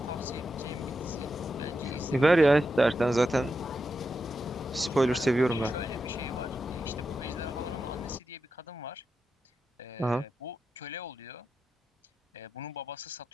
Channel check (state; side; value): normal; both; correlation 0.88